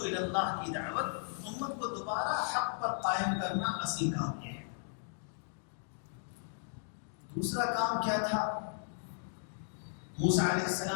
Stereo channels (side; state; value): right; silent; digital silence